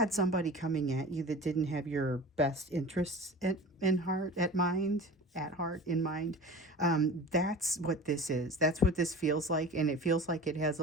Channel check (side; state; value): both; normal; correlation 0.37